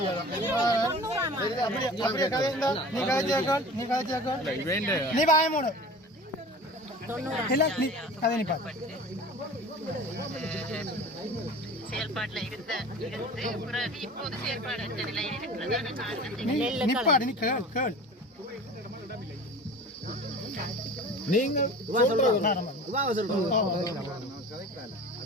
நீ வாய மூடு கதை நீ பாத்து செயல்பாட்டுல பிறகு இப்போது செயல்பாடு நிப்பாடு நீ கேள் நீங்க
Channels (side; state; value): both; normal; correlation 0.39